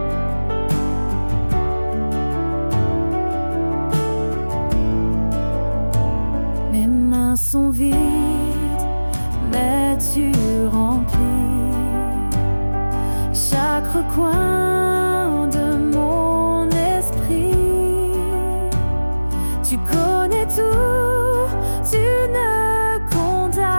Mes mains sont vides, mais tu remplis recoins de mon esprit. Tu connais tout, tu ne condamnes,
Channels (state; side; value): inverted; both; correlation -1.00